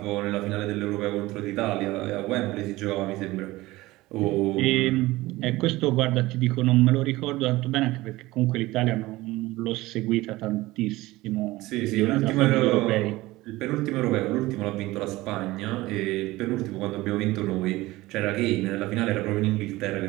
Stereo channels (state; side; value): quieter; left; 19.0 dB